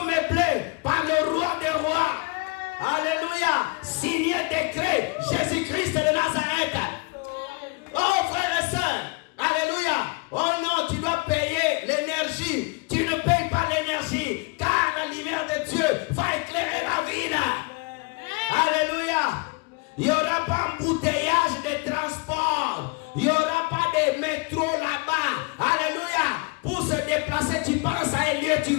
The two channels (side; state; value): right; quieter; 28.8 dB